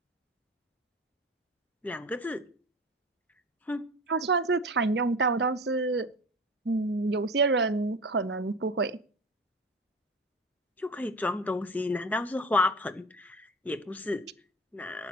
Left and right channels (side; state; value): both; normal; correlation 0.32